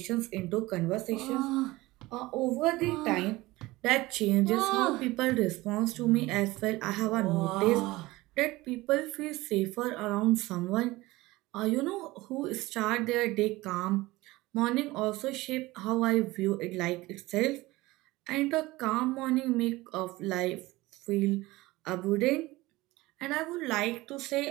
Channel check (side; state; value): left; quieter; 19.8 dB